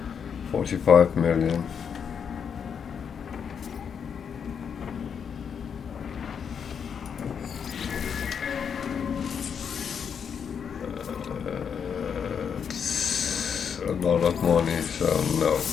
45 million. A lot of money, so no.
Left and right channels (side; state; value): right; quieter; 7.1 dB